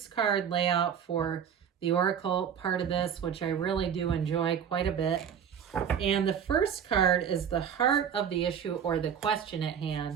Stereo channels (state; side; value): quieter; left; 8.1 dB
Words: layout for the Oracle part of this, which I really do enjoy quite a bit. And the first card is the heart of the issue or the question at